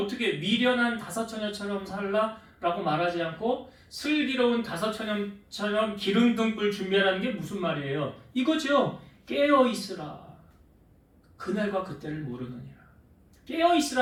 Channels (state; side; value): identical; both; correlation 1.00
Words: 어떻게 미련한 다섯 처녀처럼 살라라고 말하지 않고 슬기로운 다섯 처녀처럼 기름 등불 준비하라는 게 무슨 말이에요? 이거죠. 깨어 있으라. 그날과 그때를 모르느니라. 깨어